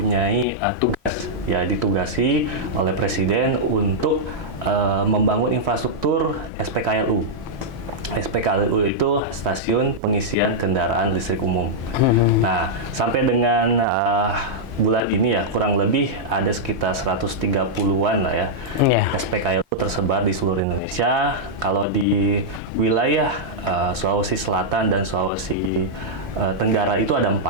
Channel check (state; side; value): normal; both; correlation -0.07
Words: tugas, ya, ditugasi oleh Presiden untuk membangun infrastruktur SPKLU. SPKLU itu stasiun pengisian kendaraan listrik umum. Nah, sampai dengan bulan ini ya, kurang lebih ada sekitar 130-an lah ya, SPKLU tersebar di seluruh Indonesia. Kalau di wilayah Sulawesi Selatan dan Sulawesi Tenggara itu ada 4.